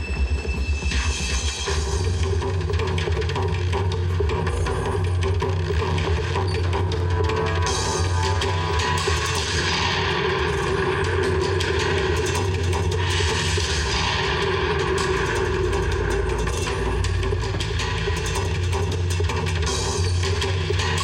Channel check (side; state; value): both; identical; correlation 1.00